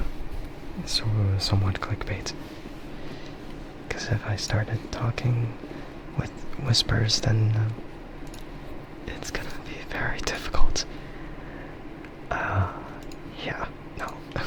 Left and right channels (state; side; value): identical; both; correlation 1.00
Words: So, somewhat clickbait. Because if I started talking with whispers, then it's gonna be very difficult. Yeah, no.